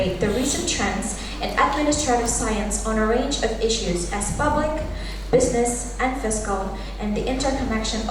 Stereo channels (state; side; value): identical; both; correlation 1.00